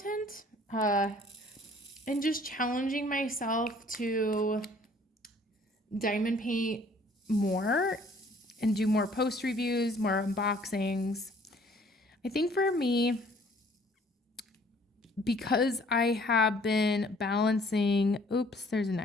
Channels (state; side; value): normal; both; correlation 0.57